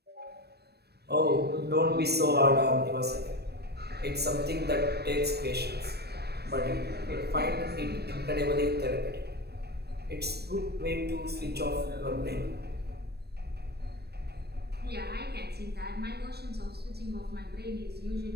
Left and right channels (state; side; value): late; left; 0.47 ms